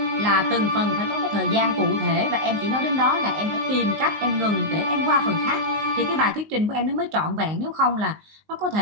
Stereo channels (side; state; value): left; late; 19 ms